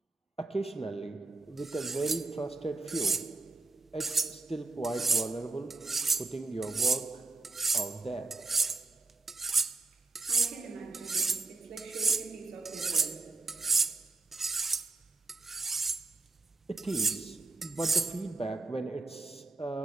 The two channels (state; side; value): quieter; left; 3.6 dB